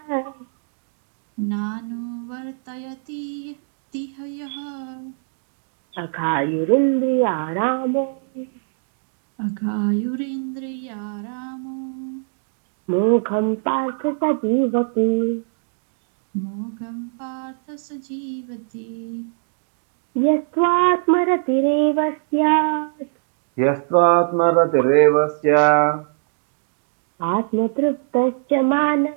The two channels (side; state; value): left; silent; digital silence